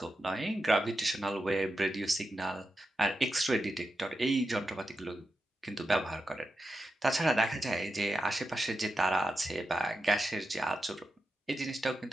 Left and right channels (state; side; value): normal; both; correlation 0.90